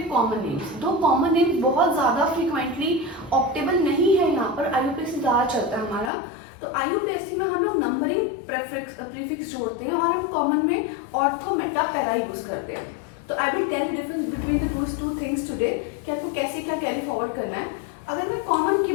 कॉमन नेम्स. दो कॉमन नेम बहुत ज्यादा फ्रीक्वेंटली ऑप्टेबल नहीं है, यहाँ पर IUPAC ज्यादा चलता है हमारा. तो IUPAC में हम लोग नंबरिंग प्रीफिक्स जोड़ते हैं और हम कॉमन में ऑर्थो मेटा पैरा यूज करते हैं. तो I will tell difference between the two things today कि आपको कैसे क्या कैरी फॉरवर्ड करना है. अगर मैं कॉमन की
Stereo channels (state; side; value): drops out; right; at 6.1 s